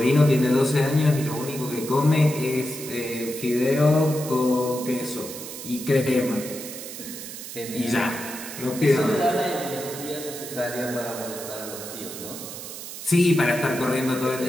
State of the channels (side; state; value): right; noise; hiss, 10 dB below the sound